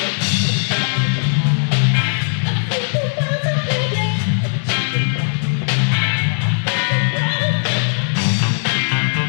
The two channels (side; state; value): right; silent; digital silence